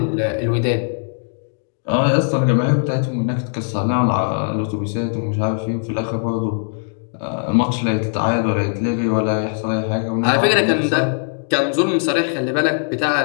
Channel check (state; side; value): silent; right; digital silence